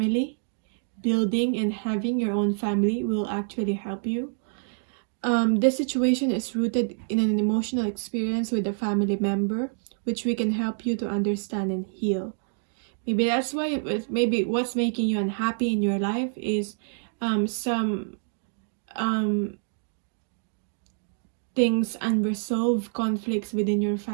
Building and having your own family will actually help you. This situation is rooted in an emotional experience with a family member, which we can help you to understand and heal. Maybe that's why maybe what's making you unhappy in your life is some things, unresolved conflicts within your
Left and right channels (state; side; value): silent; left; digital silence